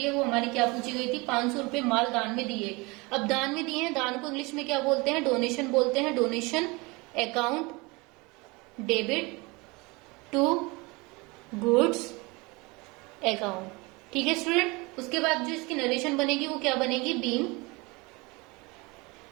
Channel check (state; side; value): quieter; left; 25.7 dB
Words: है वो हमारी क्या पूछी गई थी, 500 रुपए माल दान में दिए। अब दान में दिए हैं, दान को इंग्लिश में क्या बोलते हैं, डोनेशन बोलते हैं। Donation account debit to goods account. ठीक है स्टूडेंट, उसके बाद जो इसकी नरेशन बनेगी वो क्या बनेगी, being